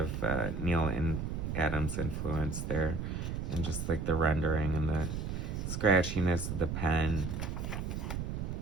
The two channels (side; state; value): right; noise; rumble, 3 dB below the sound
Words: Neil and Adams influence there, and just like the rendering and the scratchiness of the pen.